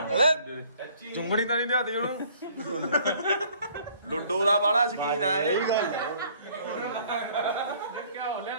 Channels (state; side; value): inverted; both; correlation -0.58